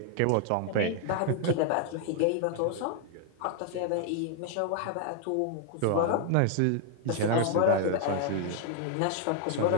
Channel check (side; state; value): both; different; correlation 0.00